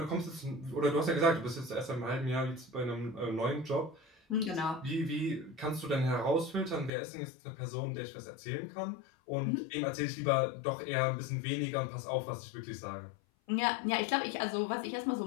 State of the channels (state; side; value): drops out; right; at 6.9 s